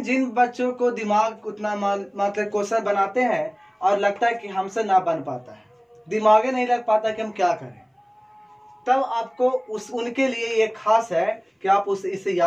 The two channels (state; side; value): identical; both; correlation 1.00